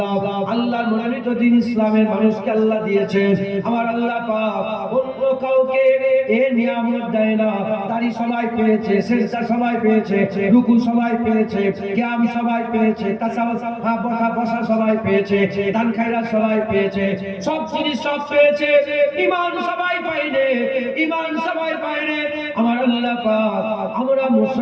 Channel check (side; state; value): both; identical; correlation 1.00